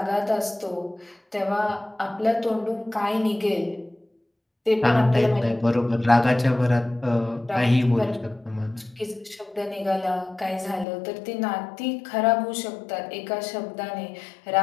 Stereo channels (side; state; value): right; drops out; at 10.9 s